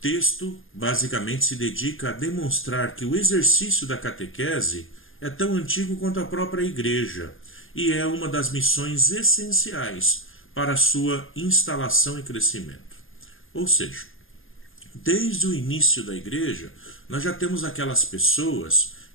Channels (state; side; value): late; right; 0.59 ms